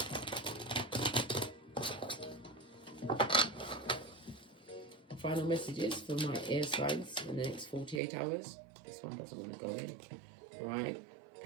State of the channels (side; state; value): left; drops out; at 8.0 s